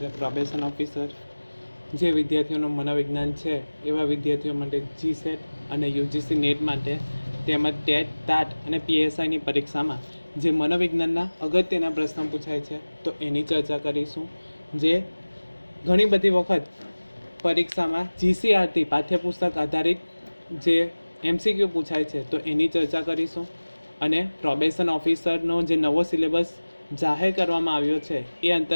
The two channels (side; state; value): both; inverted; correlation -1.00